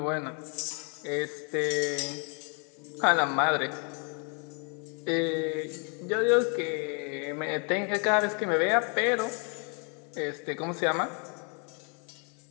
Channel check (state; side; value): quieter; right; 37.1 dB